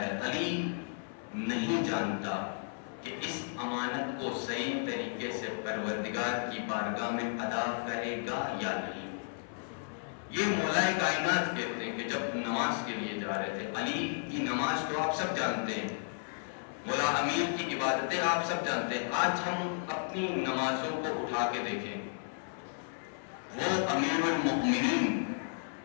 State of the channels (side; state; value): right; silent; 55 dB below the other